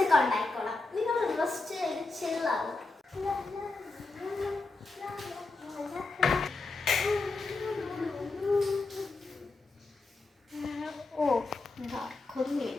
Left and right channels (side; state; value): right; quieter; 3.5 dB